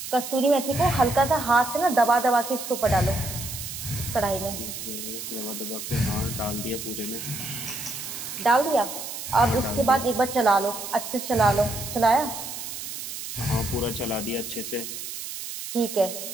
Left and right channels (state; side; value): noise; right; hiss, 8 dB below the sound